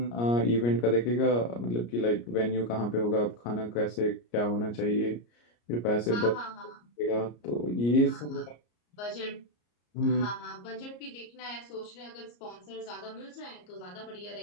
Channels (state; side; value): late; right; 34 ms